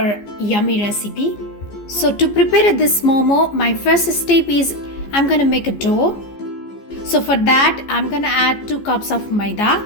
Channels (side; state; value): right; late; 14 ms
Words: yummy recipe. So to prepare this Momo, my first step is I'm gonna make a dough. So for that I'm gonna add 2 cups of maida,